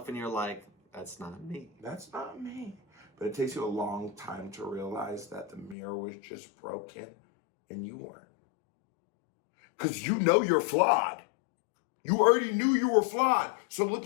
and you're like, that's not me. That's not me. But it takes you a long time to realize that the mirror was just broken and you weren't. Because you know you're flawed. You already knew you were flawed. So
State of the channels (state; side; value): drops out; right; at 5.8 s